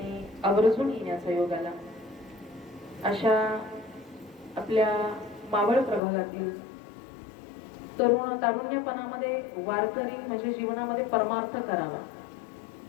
आवर्जून येण्याचा योग आला, अशा आपल्या मावळ प्रभागातील तारुण्यपणामध्ये वारकरी म्हणजे जीवनामध्ये परमार्थ करावा.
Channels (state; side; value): drops out; right; at 6.0 s